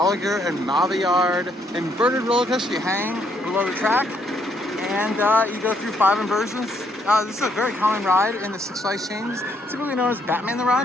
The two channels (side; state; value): both; normal; correlation 0.71